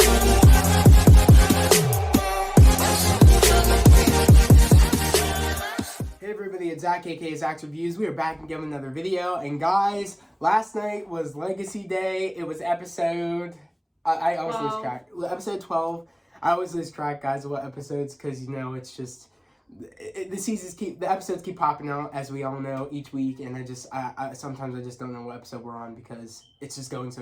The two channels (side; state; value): both; identical; correlation 1.00